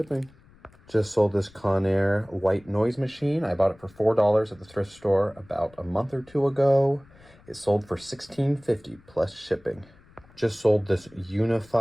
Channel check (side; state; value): left; noise; rumble, 27 dB below the sound